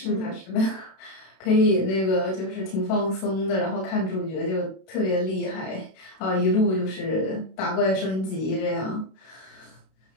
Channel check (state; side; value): late; right; 32 ms